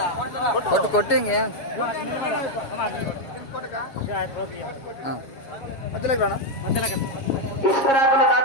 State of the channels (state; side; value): late; right; 7.4 ms